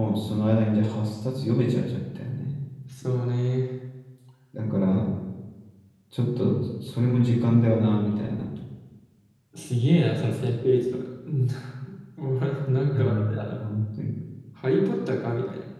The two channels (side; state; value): both; identical; correlation 1.00